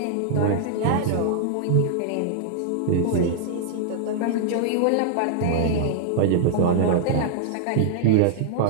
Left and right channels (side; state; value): both; different; correlation -0.01